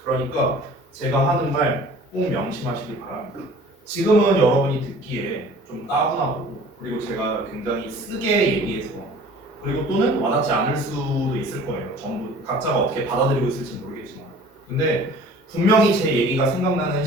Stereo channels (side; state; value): both; normal; correlation 0.47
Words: 그러니까 제가 하는 말 꼭 명심하시기 바랍니다. 지금은 여러분이 듣기에 좀 따분하고 그리고 제가 굉장히 쓰게 얘기해서 그리고 또는 와닿지 않을 수도 있을 거예요. 전부 각자가 어떻게 받아들이고 있을지 모르겠지만 근데 분명히 제 얘기가 생각나는